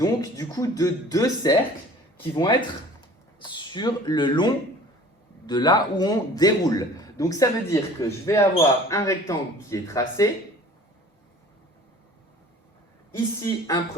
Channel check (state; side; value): normal; both; correlation 0.47